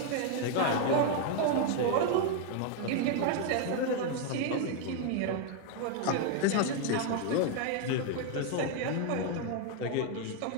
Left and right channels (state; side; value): different; both; correlation 0.00